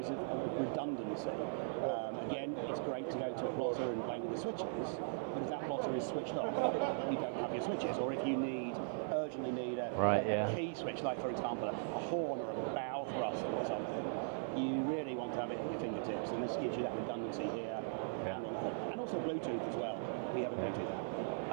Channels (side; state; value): left; silent; 52 dB below the other